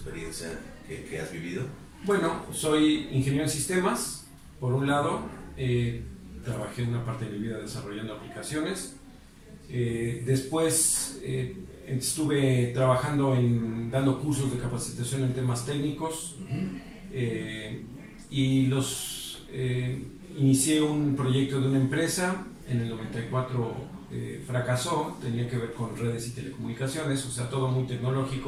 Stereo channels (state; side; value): identical; both; correlation 1.00